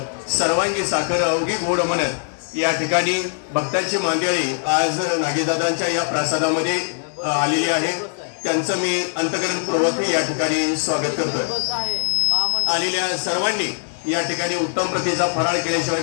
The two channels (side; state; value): right; silent; digital silence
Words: सर्वांगी साखर अवघी गोड म्हणत या ठिकाणी भक्तांची मांदियाळी आज नागेशदादांच्या या प्रासादामध्ये आलेली आहे। त्यांचं मी अंतःकरणपूर्वक या ठिकाणी स्वागत करतोय। आलेल्या सर्वांनी या ठिकाणी उत्तम प्रतीचा फराळ